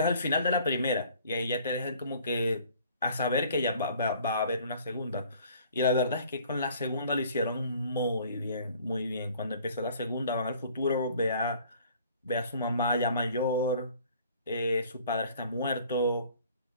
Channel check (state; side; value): inverted; both; correlation -0.54